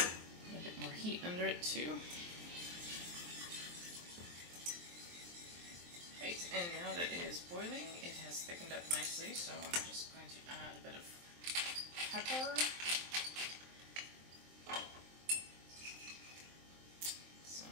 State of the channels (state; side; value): late; left; 23 ms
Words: A bit more heat under it too. Right, and now that it is boiling, it has thickened up nicely, so I'm just going to add a bit of pepper.